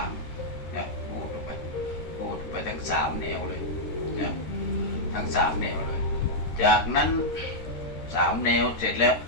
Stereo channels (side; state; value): right; late; 13 ms